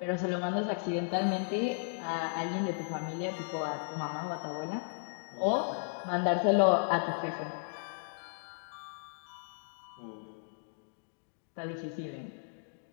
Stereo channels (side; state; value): right; silent; digital silence